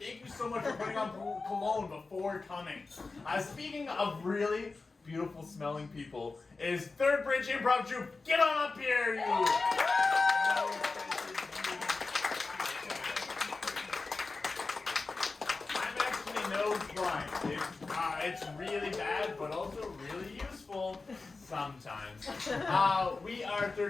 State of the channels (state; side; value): quieter; right; 3.9 dB